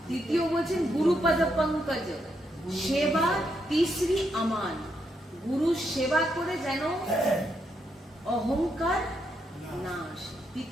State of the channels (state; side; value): normal; both; correlation 0.79